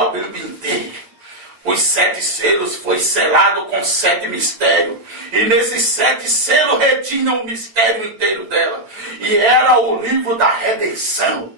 Bíblia inteira. Os 7 selos foi selado com 7 mistérios. E nesses 7 selos retinham o mistério inteiro dela. E era o livro da redenção.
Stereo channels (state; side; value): late; left; 8.8 ms